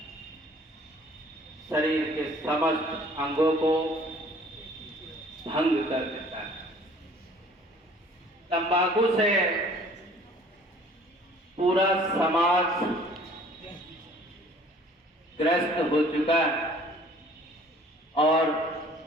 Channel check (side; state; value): both; normal; correlation 0.53